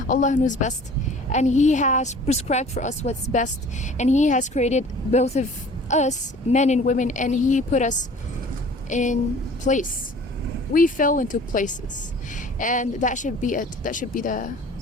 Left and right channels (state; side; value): normal; both; correlation 0.47